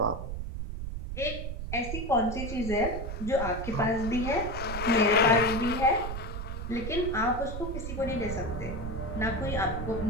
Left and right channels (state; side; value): noise; right; rumble, 5 dB below the sound